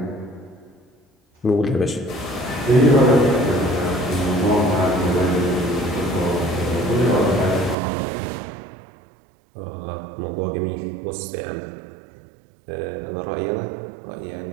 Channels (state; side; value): drops out; left; at 7.8 s